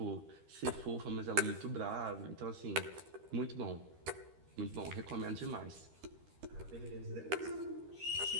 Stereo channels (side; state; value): left; late; 13 ms